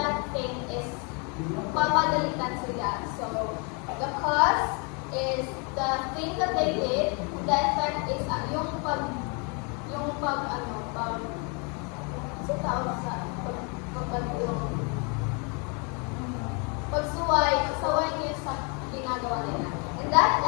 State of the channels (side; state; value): right; quieter; 34.5 dB